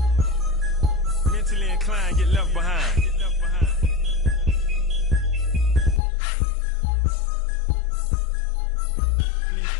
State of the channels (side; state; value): right; drops out; at 6.0 s